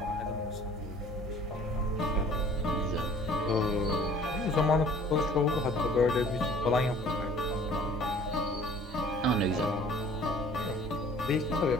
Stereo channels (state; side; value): normal; both; correlation 0.51